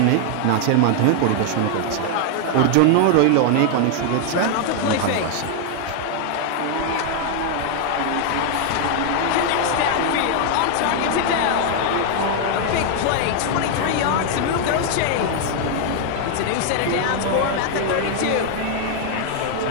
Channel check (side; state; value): both; different; correlation 0.00